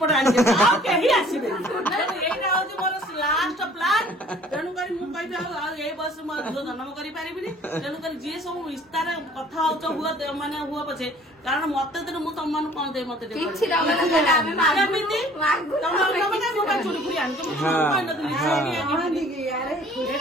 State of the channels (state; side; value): normal; both; correlation 0.53